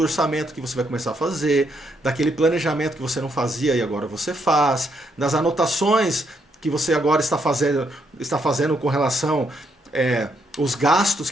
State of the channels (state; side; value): normal; both; correlation 0.75